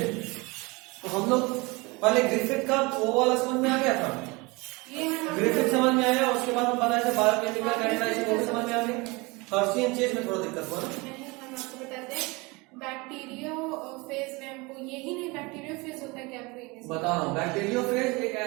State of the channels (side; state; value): left; quieter; 25.5 dB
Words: तो हम लोग पहले ग्रिफिथ का वो वाला समझ में आ गया था, ग्रिफिथ समझ में आया, उसके बाद हम बनाए थे बायोकेमिकल कैरेक्टराइजेशन, वो भी समझ में आ गई। हर्शी एंड चेज में थोड़ा दिक्कत हुआ ना। हम आपको बताते हैं बैक्टीरियोफेज में हमको यही नहीं, बैक्टीरियोफेज होता है क्या आपको बता रहा हूँ। बैक्टीरियोफेज एक